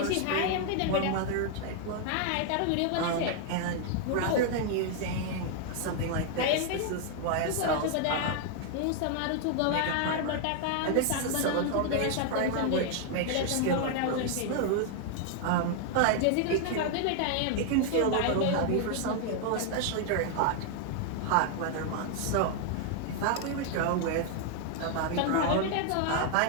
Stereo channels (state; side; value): different; both; correlation 0.00